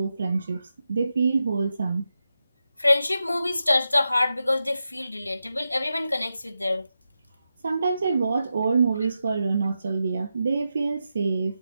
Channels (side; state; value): both; inverted; correlation -0.89